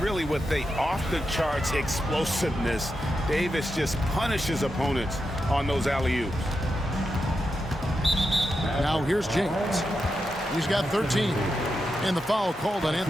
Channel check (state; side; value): normal; both; correlation 0.87